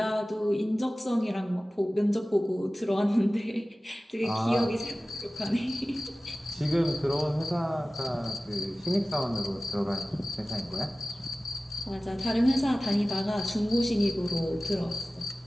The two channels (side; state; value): both; normal; correlation 0.96